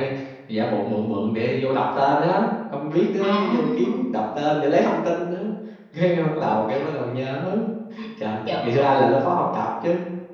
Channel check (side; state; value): both; identical; correlation 1.00